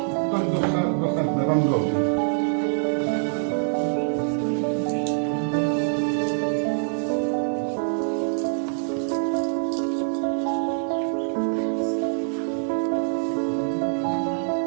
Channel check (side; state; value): left; silent; digital silence